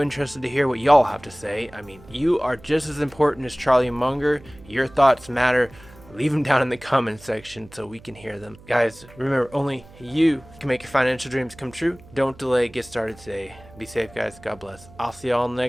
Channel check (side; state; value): right; noise; hum, 22 dB below the sound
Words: interested to hear what y'all have to say. I mean, you are just as important as Charlie Munger. Your thoughts matter. Leave them down in the comment section so we can hear them. Guys, remember, only you can make your financial dreams come true. Don't delay. Get started today. Be safe, guys. God bless. I'll see y'all in the